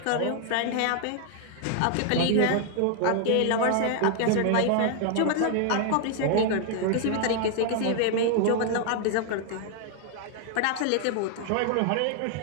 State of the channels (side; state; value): both; different; correlation 0.00